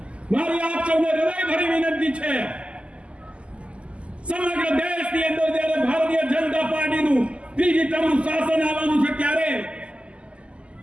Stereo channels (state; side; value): late; left; 0.055 ms